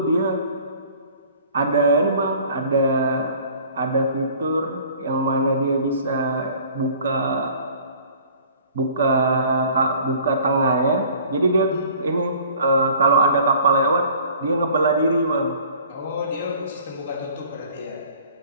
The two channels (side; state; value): both; inverted; correlation -0.51